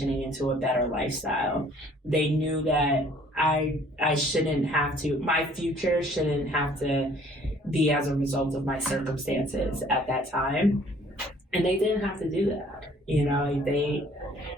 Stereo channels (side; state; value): both; normal; correlation 0.56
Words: into a better lifestyle. They knew that I shouldn't have to, my future shouldn't have to be as a result of my circumstances at that time. And they didn't have to do that. You know, they